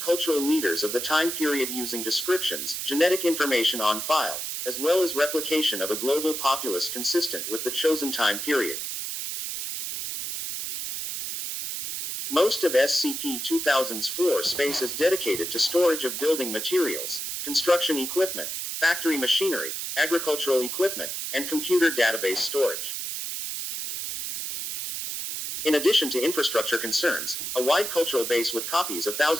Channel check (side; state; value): right; noise; hiss, 4 dB below the sound